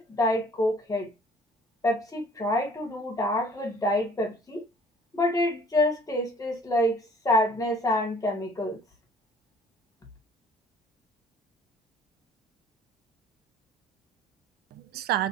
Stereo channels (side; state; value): both; normal; correlation 0.53